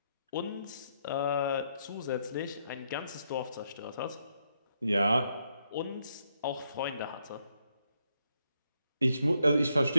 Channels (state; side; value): inverted; both; correlation -0.78